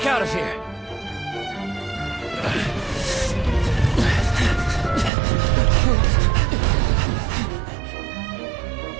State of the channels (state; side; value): drops out; left; at 5.1 s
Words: out of here.